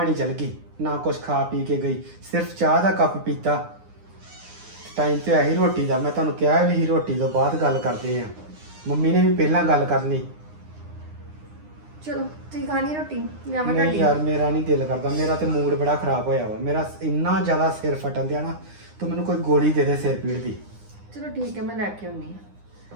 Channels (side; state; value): left; late; 9.8 ms